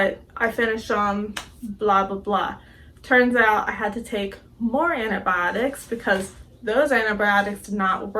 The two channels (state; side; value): identical; both; correlation 1.00